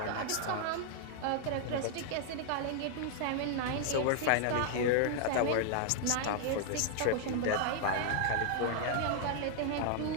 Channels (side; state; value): both; different; correlation -0.01